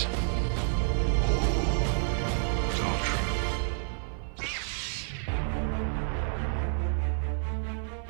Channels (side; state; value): left; silent; 55 dB below the other